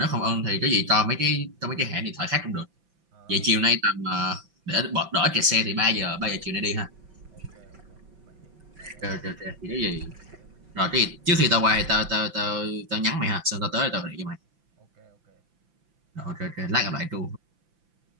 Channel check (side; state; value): left; late; 5.9 ms